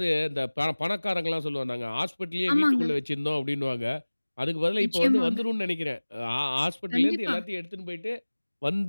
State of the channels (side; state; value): both; inverted; correlation -1.00